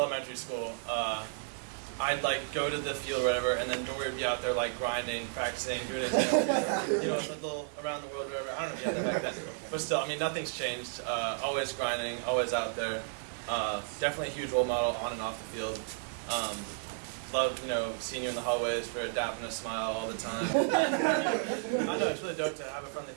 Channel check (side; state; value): left; silent; 56 dB below the other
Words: school, I'd like go to the field or whatever, and then Dory would be out there like grinding, practicing, doing it, a little around the world or whatever. I don't know if you had that back then, but still, I mean, nothing's changed. Always grinding, always out there. Definitely a huge role model on and off the field. Love, seeing you in the hallways for dapping a smile all the time. I know it's really dope to have a friendly